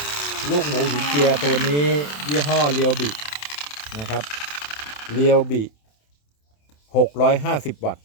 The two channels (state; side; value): late; right; 27 ms